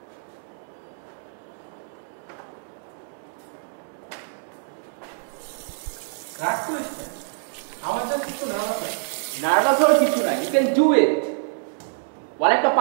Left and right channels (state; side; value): silent; left; 62 dB below the other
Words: নার্ভাস হওয়ার কিছু নাই, ইউ ক্যান ডু ইট। ওয়ালে একটা